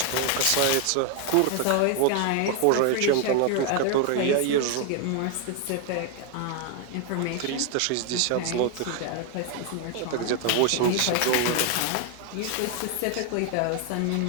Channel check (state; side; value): different; both; correlation 0.01